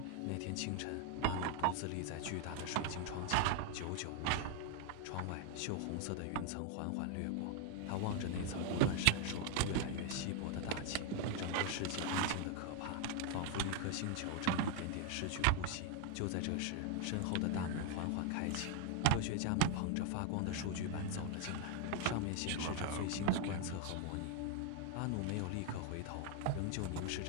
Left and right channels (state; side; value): different; both; correlation 0.01